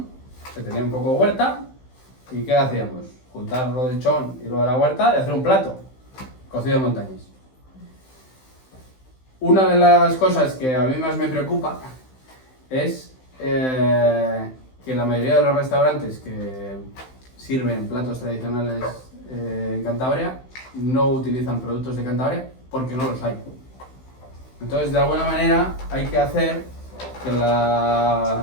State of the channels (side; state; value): right; late; 15 ms